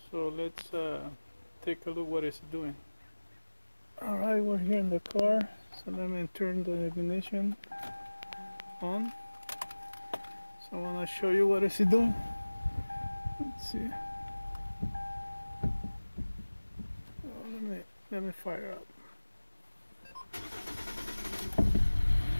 So let's take a look what it's doing. Alright, we're here in the car, so let me turn the ignition on. So I want to show you what it's doing. Let's see. Let me fire up.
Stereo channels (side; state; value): both; inverted; correlation -1.00